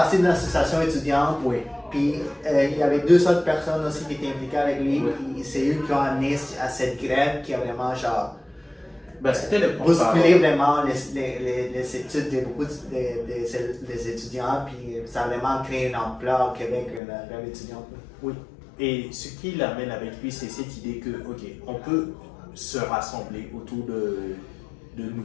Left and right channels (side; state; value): right; drops out; at 17.0 s